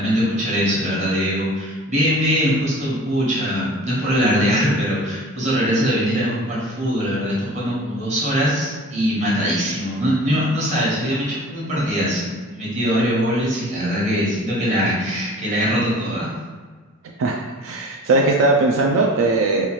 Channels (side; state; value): both; normal; correlation 0.41